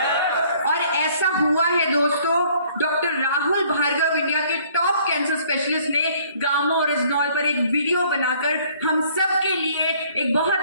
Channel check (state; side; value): inverted; both; correlation -0.59